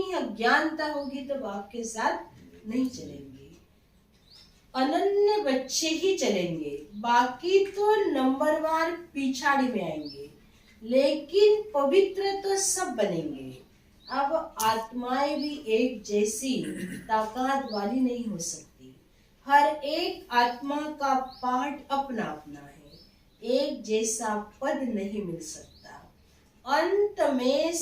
अज्ञानता होगी तो आपके साथ नहीं चलेंगे। अनन्य बच्चे ही चलेंगे, बाकी तो नंबरवार पिछाड़ी में आएंगे, लेकिन पवित्र तो सब बनेंगे। अब आत्माएं भी एक जैसी ताकत वाली नहीं हो सकती। हर एक आत्मा का पाठ अपना अपना है, एक जैसा पद नहीं मिल सकता। अंत में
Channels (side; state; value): both; identical; correlation 1.00